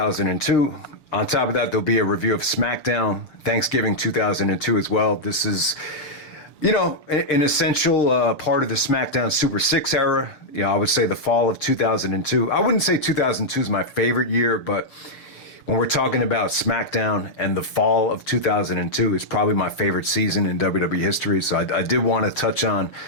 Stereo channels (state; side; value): late; right; 6.9 ms